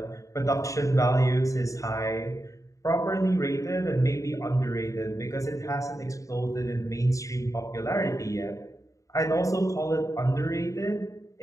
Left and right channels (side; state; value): right; late; 0.16 ms